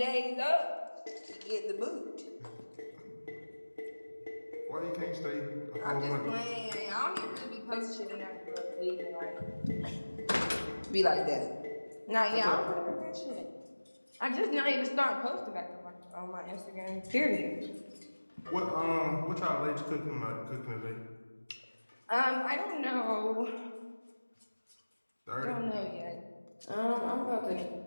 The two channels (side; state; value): both; inverted; correlation -1.00